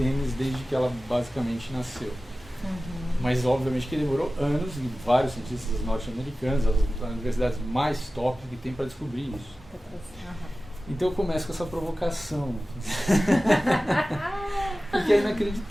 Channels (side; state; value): both; normal; correlation 0.96